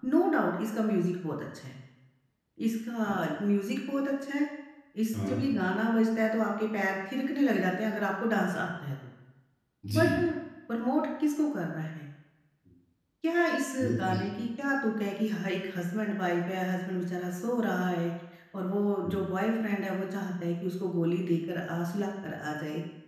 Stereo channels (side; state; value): both; identical; correlation 1.00